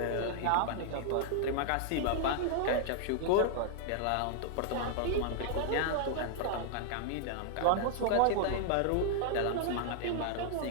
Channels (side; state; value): both; different; correlation -0.01